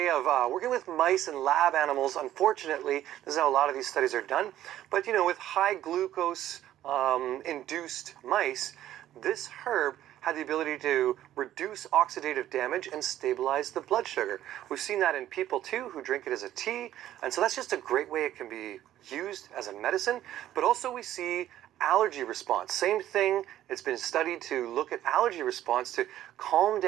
of working with mice and lab animals. Unfortunately, this is how a lot of these studies are done. But you know, with high glucose induced mice, this herb had the ability to reduce oxidative damage and stabilize the blood sugar. We've seen that in people too who drink it as a tea, and so that's just a great way it can be used as a medicine. But also we see allergy response. Same thing, it's been studied to look at allergy response to calm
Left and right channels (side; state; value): left; quieter; 12.7 dB